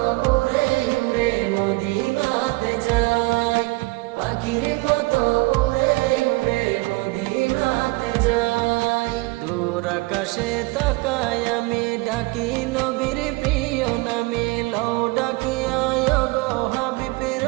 উড়ে উড়ে মদিনাতে যাই। পাখির মতো উড়ে উড়ে মদিনাতে যাই। দূর আকাশে তাকাই আমি, ডাকি নবীর প্রিয় নামে। লও ডাকিয়া গো হাবিব,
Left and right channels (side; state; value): left; quieter; 23.8 dB